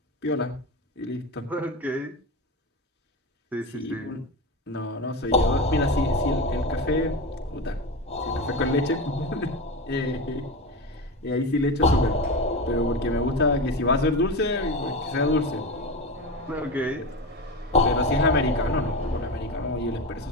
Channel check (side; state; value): both; normal; correlation 0.22